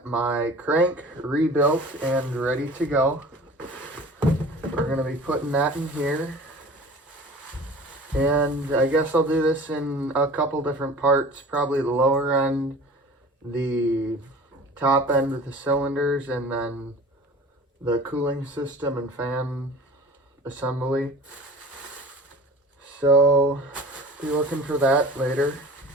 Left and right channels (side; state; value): both; normal; correlation 0.41